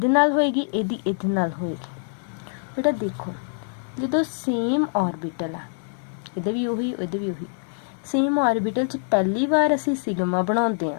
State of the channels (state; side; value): silent; right; 62 dB below the other